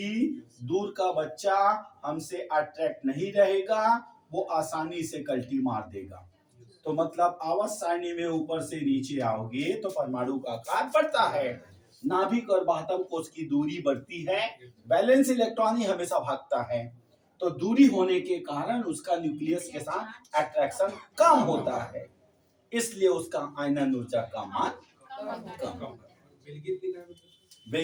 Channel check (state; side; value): identical; both; correlation 1.00